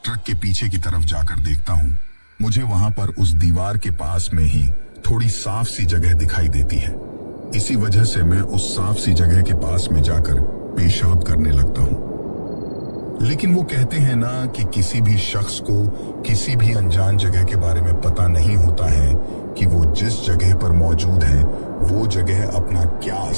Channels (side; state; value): both; inverted; correlation -1.00